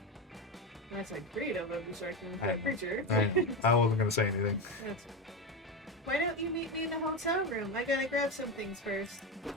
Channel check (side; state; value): both; normal; correlation 0.15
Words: That's a creative of destruction for I- a creature. I wasn't going to say anything. That's Why don't you meet me in the hotel room? I gotta grab some things first.